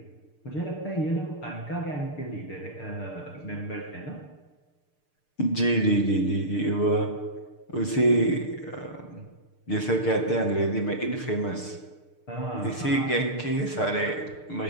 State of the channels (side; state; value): right; late; 6.7 ms